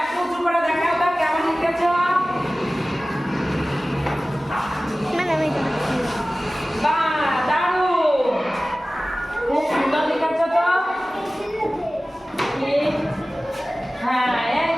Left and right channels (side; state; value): both; normal; correlation 0.97